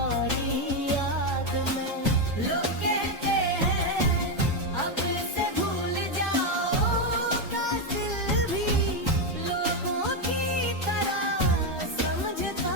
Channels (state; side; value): normal; both; correlation 0.06